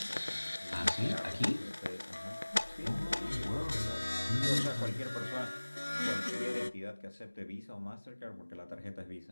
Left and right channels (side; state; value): both; inverted; correlation -1.00